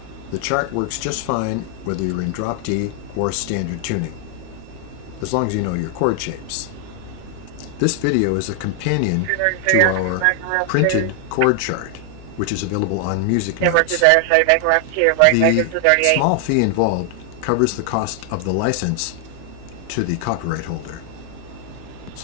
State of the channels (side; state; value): both; different; correlation 0.00